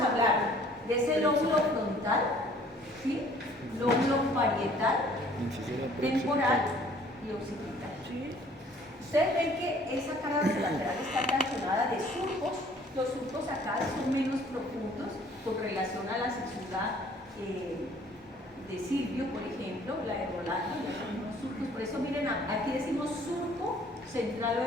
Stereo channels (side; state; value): both; normal; correlation 0.56